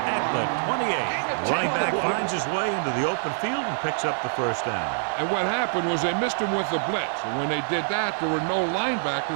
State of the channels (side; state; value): left; silent; digital silence